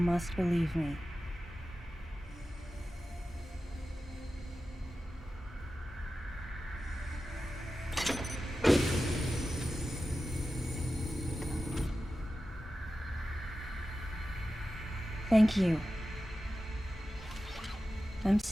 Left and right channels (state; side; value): normal; both; correlation 0.93